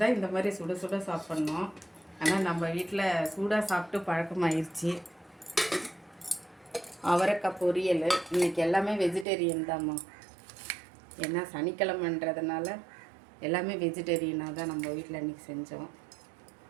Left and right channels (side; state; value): left; drops out; at 9.2 s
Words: தான் இந்த மாதிரி சுட சுட சாப்பிட்ணும். ஆனால் நம்ம வீட்டில் சூடாக சாப்பிட்டு பழக்கமாயிருச்சு. அவரைக்காய் பொரியல். இன்றைக்கி எல்லாமே வெஜிடேரியன் தான்மா, ஏன்னா சனிக்கிழமைன்றதுனால எல்லாமே வெஜிடேரியனாக தான் நம்ம வீட்டில் இன்றைக்கி செஞ்சோம்.